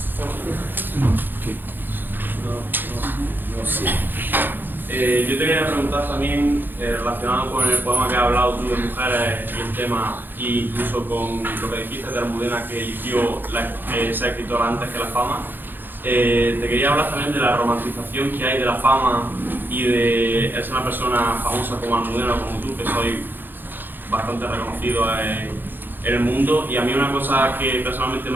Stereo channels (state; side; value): late; left; 0.094 ms